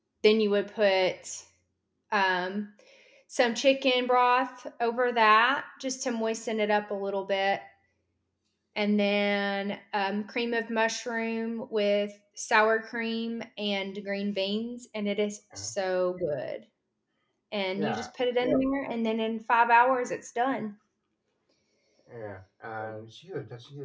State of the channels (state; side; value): identical; both; correlation 1.00